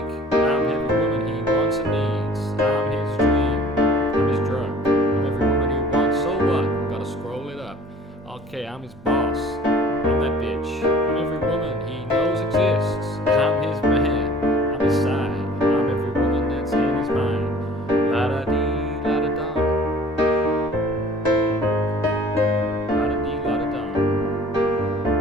I'm every woman he wants and needs. I'm his dream. I'm his drug. I'm every woman he wants. So what? Gotta scroll it up. Okay, I'm his boss. I'm that bitch. I'm every woman he knows exists. I'm his man. I'm his side. I'm every woman that's in his mind. La da dee, la da dum. La da dee, la da dum.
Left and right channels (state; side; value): normal; both; correlation 0.50